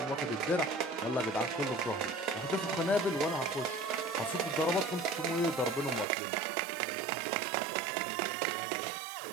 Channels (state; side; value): drops out; left; at 6.1 s